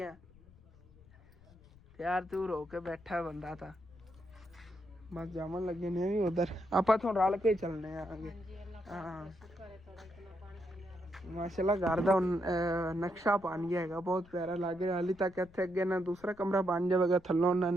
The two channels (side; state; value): left; noise; rumble, 25 dB below the sound